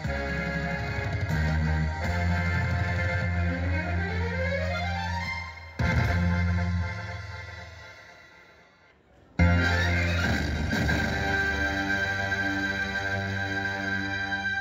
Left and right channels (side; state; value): both; identical; correlation 1.00